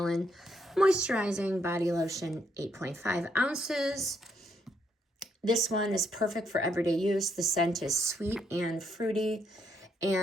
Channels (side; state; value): both; normal; correlation 0.75